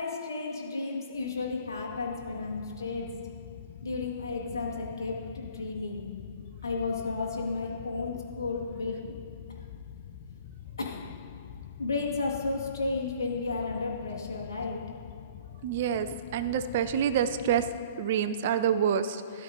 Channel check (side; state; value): both; inverted; correlation -0.52